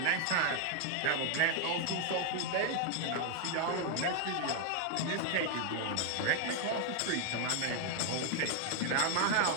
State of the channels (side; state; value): both; different; correlation 0.00